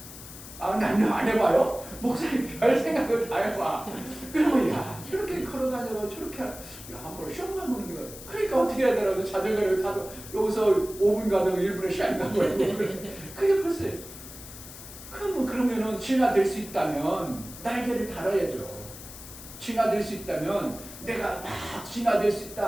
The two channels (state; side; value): noise; left; hiss, 14 dB below the sound